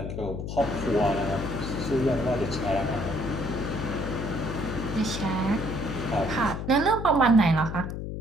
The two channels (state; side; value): noise; left; hum, 5 dB below the sound